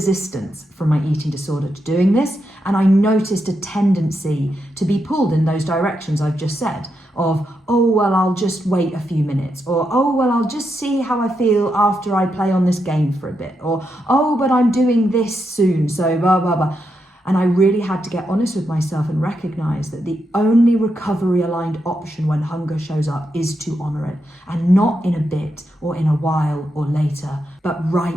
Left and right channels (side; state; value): both; normal; correlation 0.84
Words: from my eating disorder to doing this. And I noticed a tendency to be pulled in those directions I've just said of, oh, well, I'll just wait a few minutes, or, oh, well, I'll just see how I feel after I play on this game for a bit, or, oh, but I'm doing this soon, so blah, blah, blah. And I really had to get honest with myself and recognize that the only recovery aligned option when hunger shows up is to honor it, and not in a bit or in a while or later, but